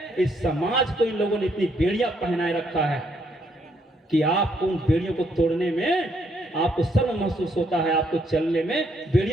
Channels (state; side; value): normal; both; correlation 0.72